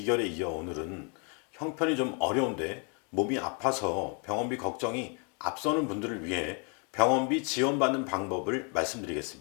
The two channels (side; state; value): right; quieter; 36.9 dB